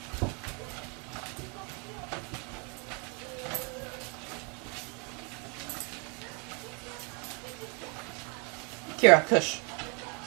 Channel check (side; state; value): left; quieter; 33.5 dB